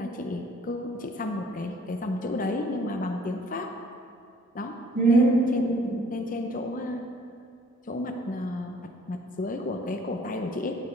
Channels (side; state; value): both; normal; correlation 0.57